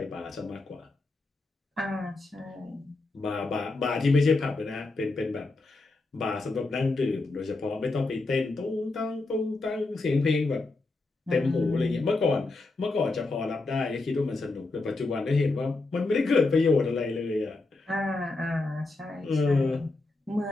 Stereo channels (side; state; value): right; quieter; 3.3 dB